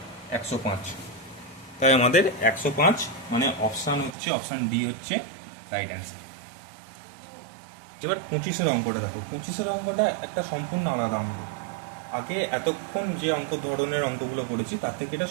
105। তাই আমাদের 105, মানে অপশান হচ্ছে অপশান ডি হচ্ছে রাইট অ্যান্সার। এবার 25-এর অঙ্কটা দেখো। 25-এর অঙ্কটা একটা সম্পূর্ণ আলাদা অঙ্ক। আগে এতক্ষণ যে অঙ্ক ধরনের অঙ্কগুলো করেছি তার থেকে এটা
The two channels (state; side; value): drops out; left; at 4.2 s